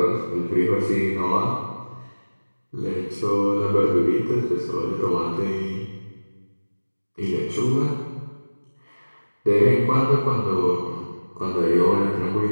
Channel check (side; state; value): both; inverted; correlation -1.00